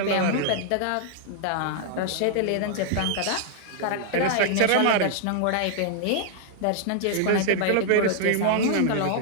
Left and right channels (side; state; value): both; different; correlation -0.01